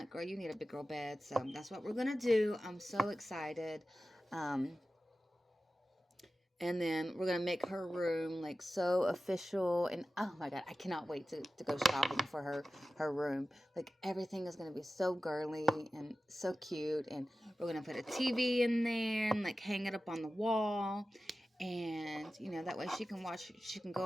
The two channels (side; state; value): both; normal; correlation 0.94